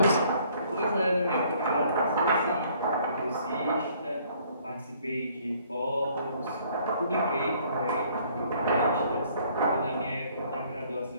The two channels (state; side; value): inverted; both; correlation -0.61